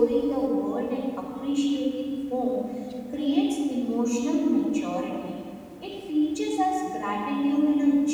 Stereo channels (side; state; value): both; identical; correlation 1.00